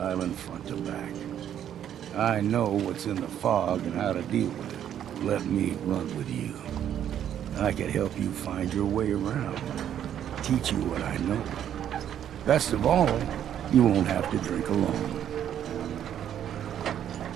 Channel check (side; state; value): left; quieter; 10.1 dB